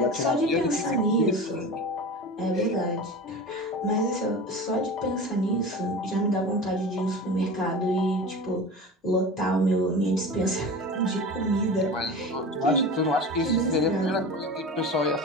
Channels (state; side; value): normal; both; correlation 0.32